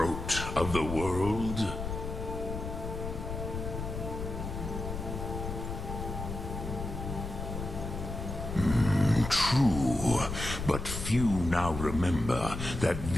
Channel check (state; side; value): noise; left; rumble, 6 dB below the sound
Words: of the world? True, but few now remember that